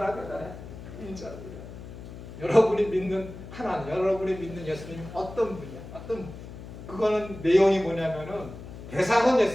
대단해. 인자로 인하여. 여러분이 믿는 하나님, 여러분이 믿는 예수님 어떤 분이야? 그거는 내용이 뭐냐면은 대상은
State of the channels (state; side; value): noise; left; hum, 13 dB below the sound